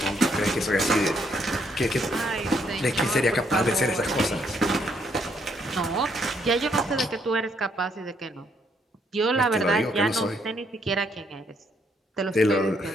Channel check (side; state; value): both; normal; correlation 0.72